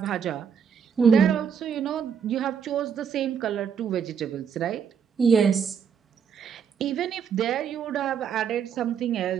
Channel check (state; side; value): quieter; left; 7.3 dB